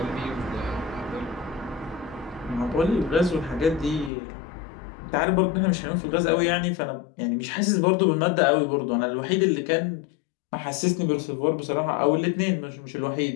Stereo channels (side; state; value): right; drops out; at 4.1 s